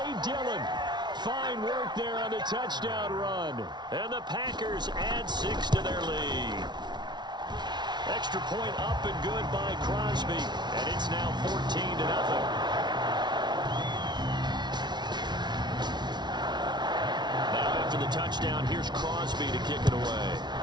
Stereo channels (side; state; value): left; late; 0.20 ms